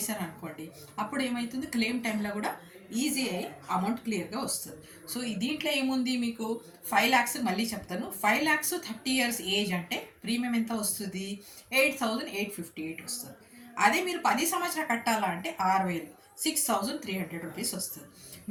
అప్పుడు ఏమవుతుంది, క్లెయిమ్ టైంలో కూడా ఈజీ అయ్యి అమౌంట్ క్లియర్గా వస్తుంది. సో దీంట్లో ఏముంది, మీకు 5 lakhs మళ్ళీ చెప్తాను. 5 lakhs 30 years ఏజ్ అంటే ప్రీమియం ఎంత వస్తుంది, 8,858 వస్తుంది. అదే మీరు 10 సంవత్సరాలు కట్టాలా అంటే 6,000, 6,300 రూపీస్ వస్తుంది.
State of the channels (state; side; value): identical; both; correlation 1.00